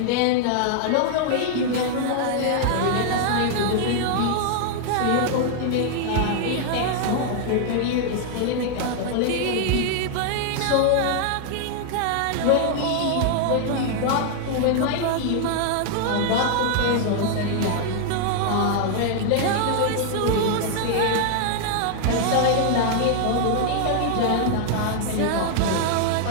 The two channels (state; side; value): different; both; correlation 0.00